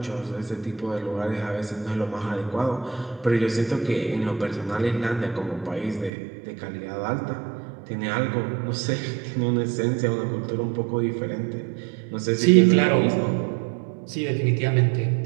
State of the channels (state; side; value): drops out; left; at 6.1 s